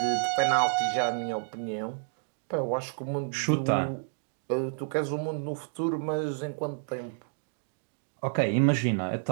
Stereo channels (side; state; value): left; silent; digital silence